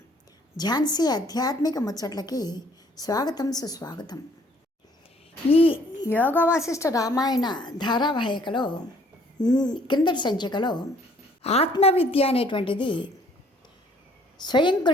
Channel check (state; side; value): normal; both; correlation 0.60